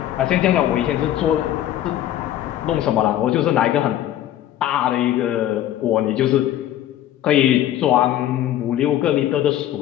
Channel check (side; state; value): right; quieter; 12.3 dB